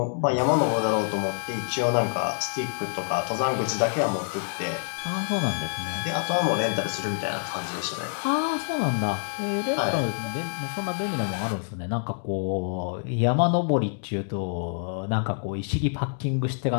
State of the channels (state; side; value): silent; right; digital silence